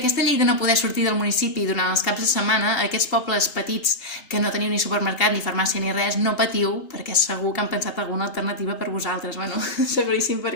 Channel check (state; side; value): late; right; 3.8 ms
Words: aquesta llei de no poder sortir del municipi durant els caps de setmana, aquests pobles petits que no teniu ni supermercat, ni farmàcia, ni res, no patiu, perquè segur que han pensat alguna alternativa per vosaltres. Bueno, seguríssim,